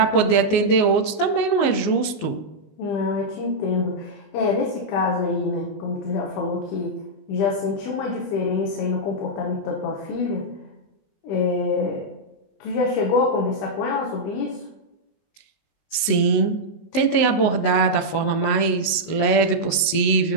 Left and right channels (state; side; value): late; right; 19 ms